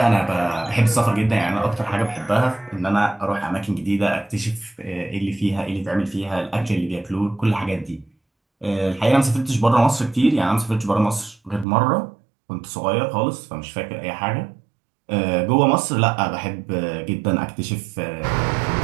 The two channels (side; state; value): left; drops out; at 11.7 s